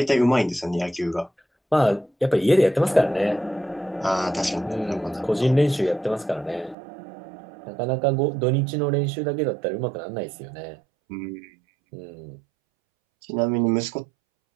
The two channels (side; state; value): left; drops out; at 6.8 s